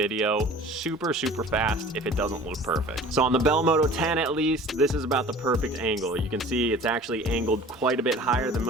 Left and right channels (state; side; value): normal; both; correlation 0.44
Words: super fast if it doesn't look perfect. So on the Bell Moto 10 at least, this is about the perfect angle. You can see it's actually angled quite a bit higher than